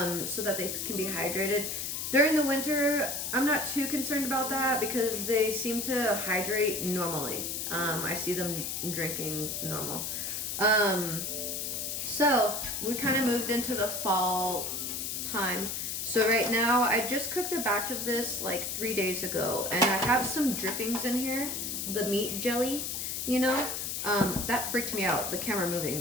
so that they can be hydrated. During the winter, I'm not too concerned about that because they seem to hydrate normally. I see them drinking normal. So we kind of moved into the fall time. So right now, I just cooked a batch of this like 3 days ago, and I have some drippings in here, the meat jelly, you know? That freaked me out, the camera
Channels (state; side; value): noise; left; hiss, 3 dB below the sound